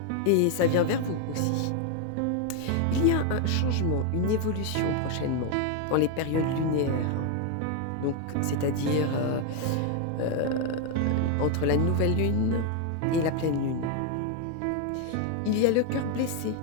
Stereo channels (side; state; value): both; different; correlation 0.01